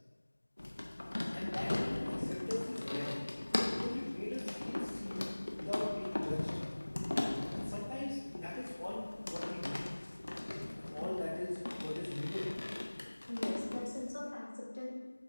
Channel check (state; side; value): inverted; both; correlation -1.00